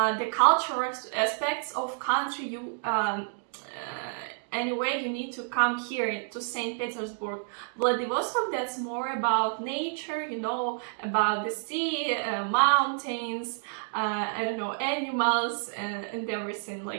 cultural aspects of country, you anyway, you need to come here to St. Petersburg. Vladivostok, that's more about nature, you know, about the sea, mountains, I don't know, animals, and everything,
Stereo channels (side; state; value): left; silent; digital silence